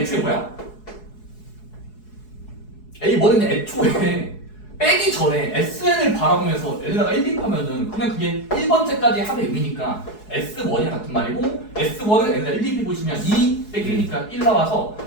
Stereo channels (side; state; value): right; late; 4.7 ms